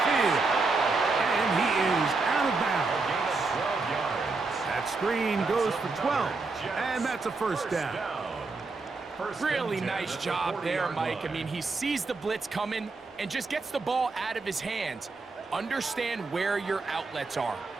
and he is out of bounds. That screen goes for 12, and that's a first down. Really nice job there, Mike. I mean, he sees the blitz coming and just gets the ball out of his hands. Understand where your outlets are.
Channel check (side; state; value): left; quieter; 3.9 dB